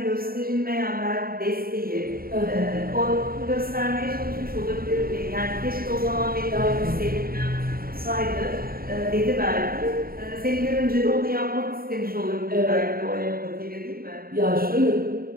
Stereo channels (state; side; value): late; left; 0.43 ms